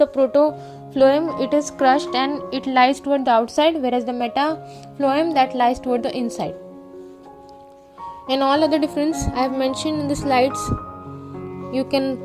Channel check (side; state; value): both; identical; correlation 1.00